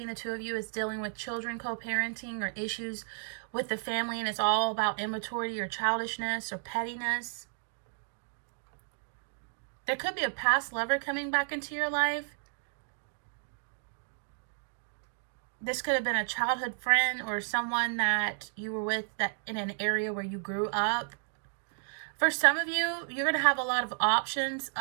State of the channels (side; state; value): left; silent; digital silence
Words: the two of you, it's dealing with children, co-parenting, or issues with the family, and it's all about immaturity or childishness or pettiness. There could be a past lover coming back into your life. This could have been a childhood friend or someone that you were with that in an area where you grew up. For some of you, you're going to have a lot of options.